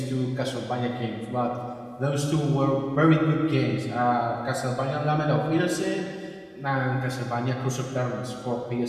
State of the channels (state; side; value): identical; both; correlation 1.00